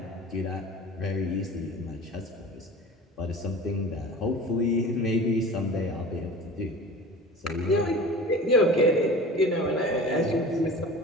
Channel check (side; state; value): both; normal; correlation 0.38